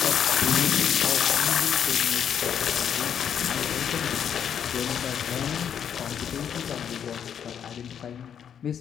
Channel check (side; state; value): right; quieter; 8.5 dB